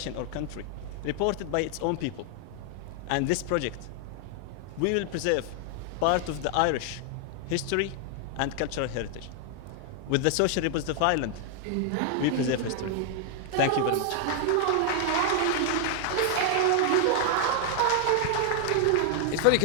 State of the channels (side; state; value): both; different; correlation 0.00